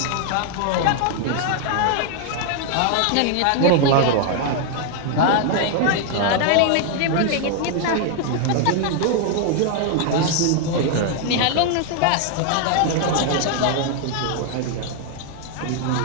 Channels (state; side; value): different; both; correlation 0.00